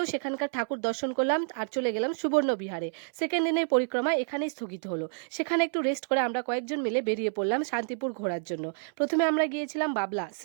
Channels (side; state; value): left; silent; 59 dB below the other